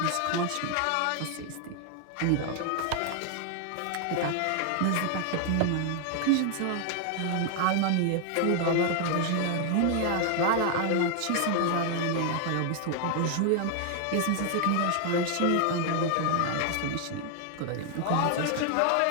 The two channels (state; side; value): different; both; correlation 0.00